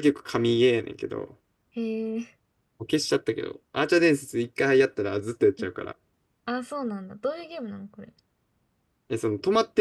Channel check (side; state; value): both; identical; correlation 1.00